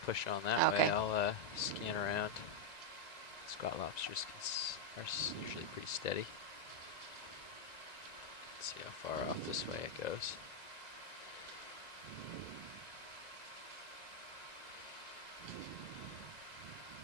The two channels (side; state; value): right; late; 1.9 ms